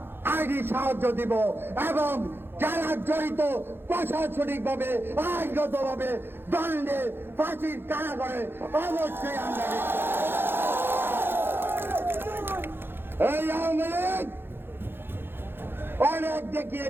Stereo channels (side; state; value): left; late; 0.10 ms